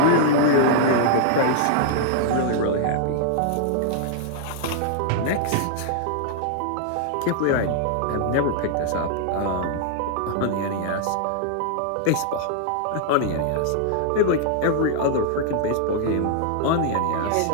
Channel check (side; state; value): both; different; correlation -0.01